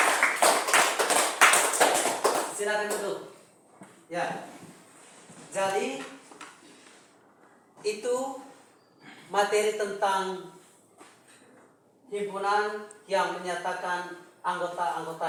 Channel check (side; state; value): both; identical; correlation 1.00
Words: Silakan duduk. Ya, jadi itu materi tentang himpunan yang menyatakan